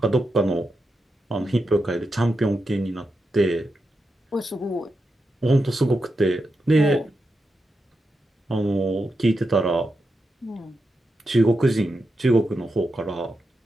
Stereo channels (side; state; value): both; normal; correlation 0.87